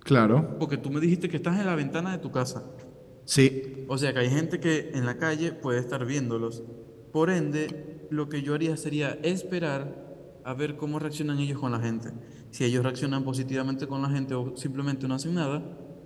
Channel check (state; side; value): identical; both; correlation 1.00